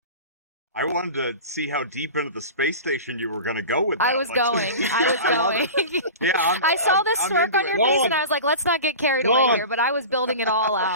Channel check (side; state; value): both; inverted; correlation -0.33